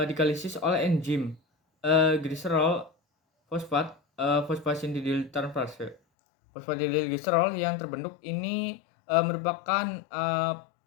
oleh enzim gliserol fosfat fosfatidil transferase. Fosfatidilglycerol yang terbentuk ini merupakan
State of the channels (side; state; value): right; drops out; at 6.0 s